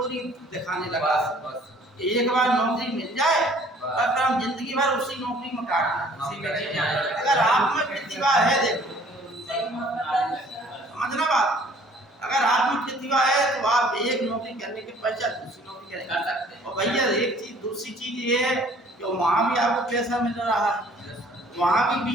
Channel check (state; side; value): normal; both; correlation 0.55